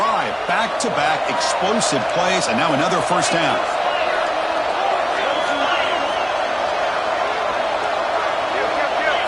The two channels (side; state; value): both; identical; correlation 1.00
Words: Back-to-back explosive plays, and now another first down.